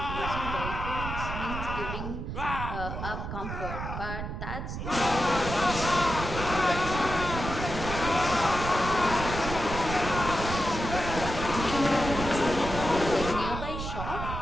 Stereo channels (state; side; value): noise; right; rumble, 6 dB below the sound